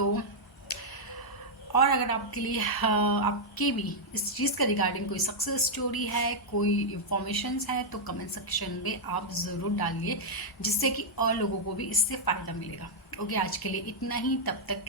और अगर आपके लिए आपके भी इस चीज़ का रिगार्डिंग कोई सक्सेस स्टोरी है, कोई इन्फॉर्मेशंस है, तो कमेंट सेक्शन में आप ज़रूर डालिए, जिससे कि और लोगों को भी इससे फ़ायदा मिलेगा। ओके, आज के लिए इतना ही, तब तक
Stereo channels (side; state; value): both; normal; correlation -0.04